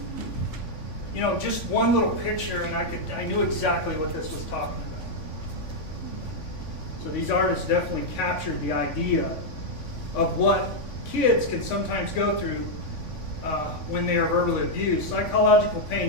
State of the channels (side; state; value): right; late; 3.5 ms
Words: you know, just one little picture and I knew exactly what this was talking about. So these artists definitely captured the idea of what kids can sometimes go through when they are verbally abused. Psychological